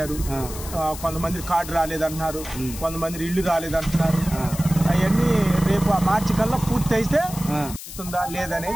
కొంతమంది కార్డు రాలేదంటున్నారు, కొంతమంది ఇల్లు రాలేదంటున్నారు. అవన్నీ రేపు ఆ మార్చి కల్లా పూర్తి అయితే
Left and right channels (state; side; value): noise; left; hiss, 12 dB below the sound